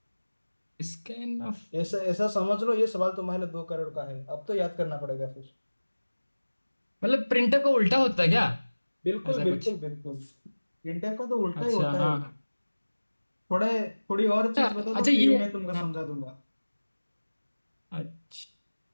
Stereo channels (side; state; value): both; inverted; correlation -1.00